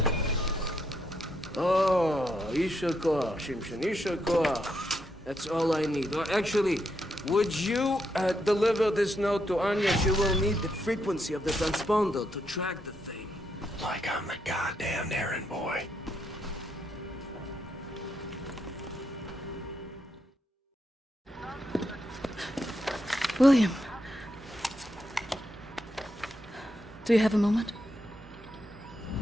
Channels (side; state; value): both; normal; correlation 0.80